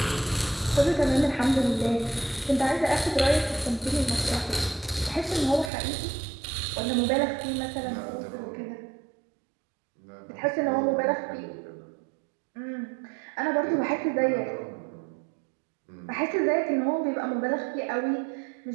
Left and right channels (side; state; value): left; drops out; at 5.7 s